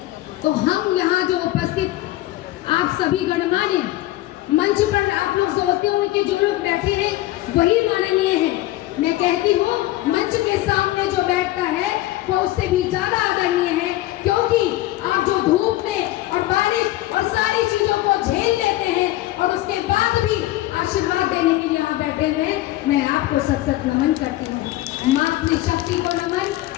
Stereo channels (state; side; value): quieter; right; 16.3 dB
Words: तो हम यहाँ जो उपस्थित आप सभी गणमान्य मंच पर आप लोग सोचते हो कि जो लोग बैठे हैं वही माननीय हैं। मैं कहती हूँ मंच के सामने जो बैठता है वो उससे भी ज्यादा आदरणीय है, क्योंकि आप जो धूप में और बारिश और सारी चीजों को झेल लेते हैं और उसके बाद भी आशीर्वाद देने के लिए यहाँ बैठे हुए हैं। मैं आपको सत सत नमन करती हूँ। मातृशक्ति को नमन।